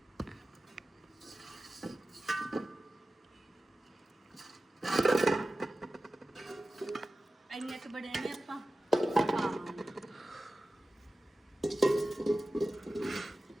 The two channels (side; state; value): both; normal; correlation 0.95